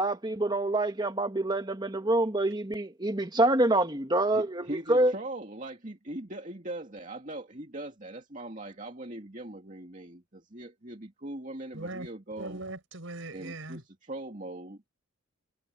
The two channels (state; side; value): normal; both; correlation 0.56